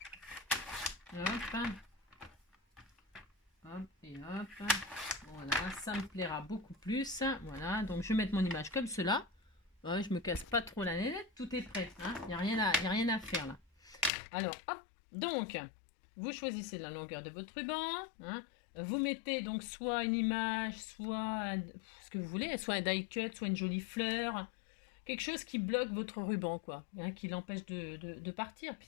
Hop. Hop et hop. Voilà, ça me plaira beaucoup plus. Voilà, donc je vais mettre mon image comme cela. Ouais, je me casse pas trop la nénette, tout est prêt. Il n'y a rien à faire là. Alors, hop, donc, vous choisissez la longueur de votre ruban. Vous mettez donc soit une image, soit ce que vous voulez, soit un die cut, soit une jolie fleur. Quelque chose qui bloque votre ruban, quoi. Qui l'empêche de partir, puis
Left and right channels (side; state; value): right; drops out; at 14.1 s